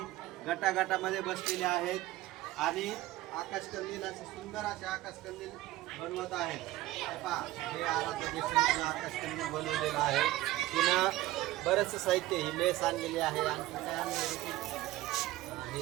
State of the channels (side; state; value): left; quieter; 16.8 dB